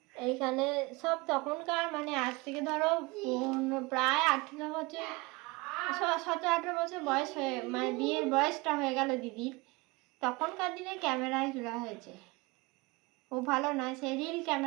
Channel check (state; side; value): quieter; left; 24.3 dB